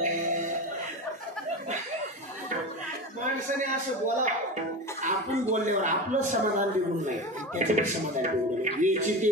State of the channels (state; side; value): normal; both; correlation 0.25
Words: माणसाने असं बोला आपण बोलल्यावर आपलं समाधान बिघडू नये त्याचं समाधान बिघडू नये. याची ते